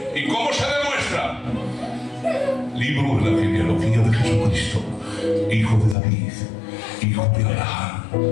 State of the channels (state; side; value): drops out; right; at 6.0 s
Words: ¿Y cómo se demuestra? Libro de la genealogía de Jesucristo, hijo de David, hijo de Abraham.